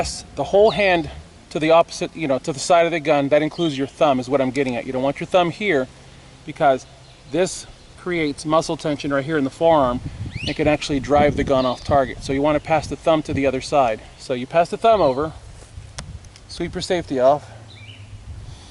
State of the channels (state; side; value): identical; both; correlation 1.00